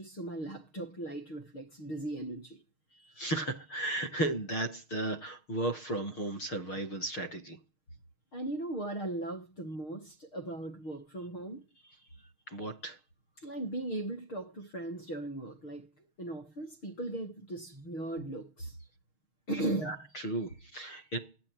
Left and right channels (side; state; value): right; late; 6.5 ms